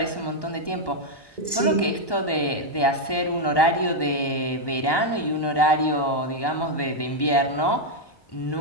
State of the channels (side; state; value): right; late; 1.1 ms